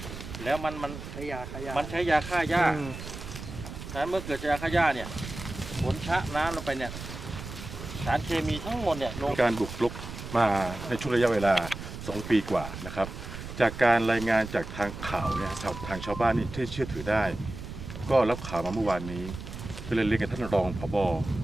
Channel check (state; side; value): noise; right; rumble, 10 dB below the sound